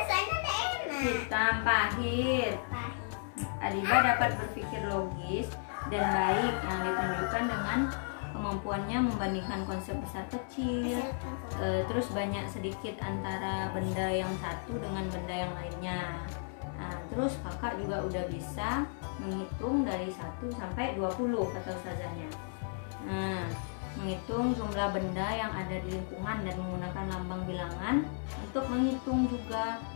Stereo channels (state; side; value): silent; right; digital silence